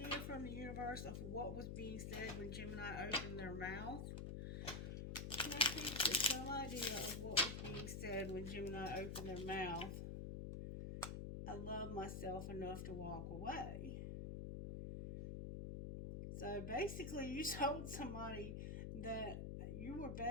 from the universe of what was being said when Gemini opened their mouth? Can I please get some idea of what was being said when Gemini opened their mouth? I love myself enough to walk away. So basically you told somebody that you were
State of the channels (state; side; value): noise; left; hum, 4 dB below the sound